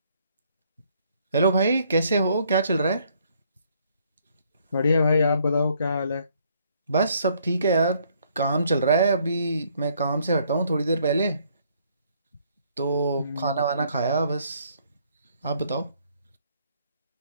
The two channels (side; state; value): both; inverted; correlation -0.66